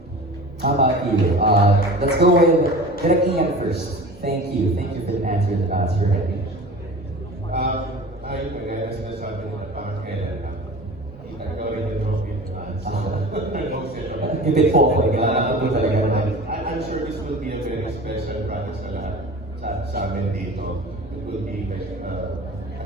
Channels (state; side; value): normal; both; correlation 0.37